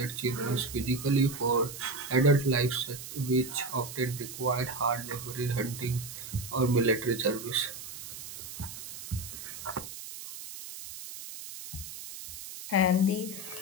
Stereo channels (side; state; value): right; noise; hiss, 11 dB below the sound